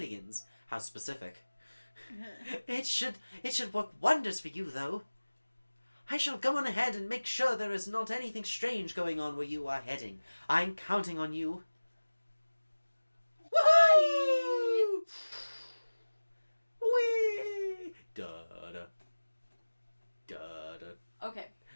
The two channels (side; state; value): both; inverted; correlation -1.00